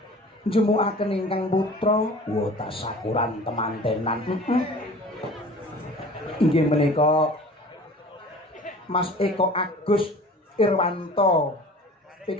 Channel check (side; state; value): both; normal; correlation 0.44